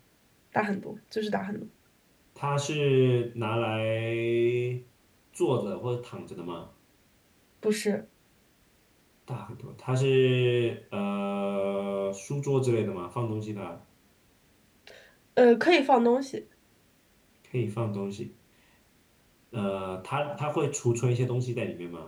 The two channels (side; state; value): both; identical; correlation 1.00